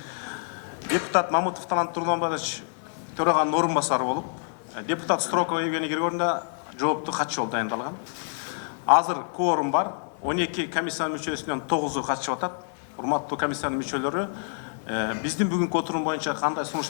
депутат Мамытов Талант Тургунбаевич төраганын орун басары болуп, депутат Строкова Евгений Григорьевна жооптуу катчы болуп дайындалган. Азыр кворум бар. 12 комиссиянын мүчөсүнөн 9-у катышып атат. Урматтуу комиссиянын мүчөлөрү, биздин бүгүнкү отурум боюнча кандай сунуш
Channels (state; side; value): silent; right; digital silence